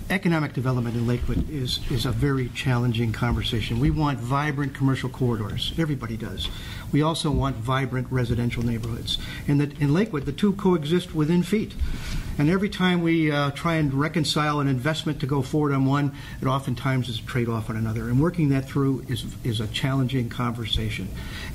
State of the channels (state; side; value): identical; both; correlation 1.00